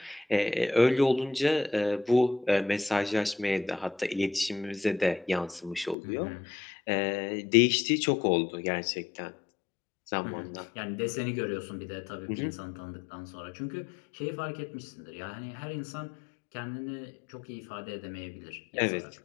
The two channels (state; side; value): drops out; right; at 6.0 s